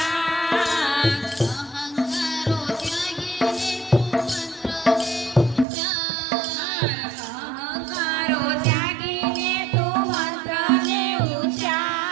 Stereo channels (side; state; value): left; drops out; at 5.7 s